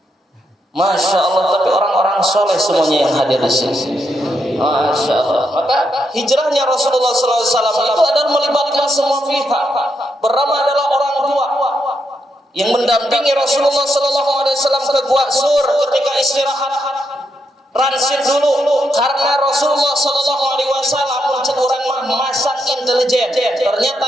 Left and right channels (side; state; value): both; normal; correlation 0.81